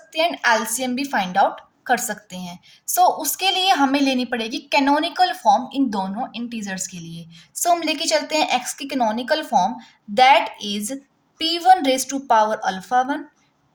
हैं एंड एलसीएम भी फाइंड आउट कर सकते हैं। सो उसके लिए हमें लेनी पड़ेगी कैनोनिकल फॉर्म इन दोनों इंटीजर्स के लिए। सो हम लेके चलते हैं एक्स की canonical form, that is p1 raise to power alpha 1,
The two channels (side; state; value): both; identical; correlation 1.00